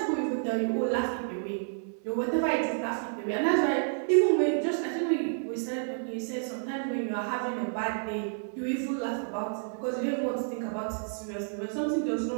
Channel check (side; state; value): left; silent; 56 dB below the other